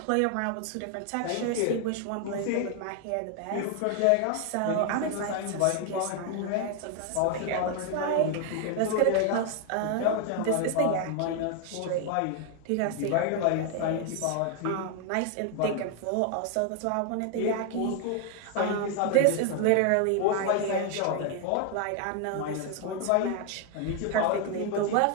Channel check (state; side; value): different; both; correlation 0.00